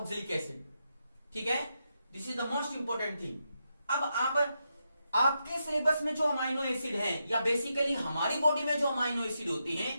acid. ठीक है, this is the most important thing. अब आपके syllabus में जो अमाइनो एसिड है या basically हमारी बॉडी में जो अमाइनो एसिड होते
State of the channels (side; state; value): both; inverted; correlation -0.84